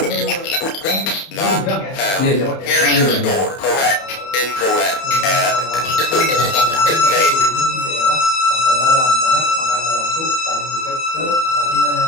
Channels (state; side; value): late; right; 31 ms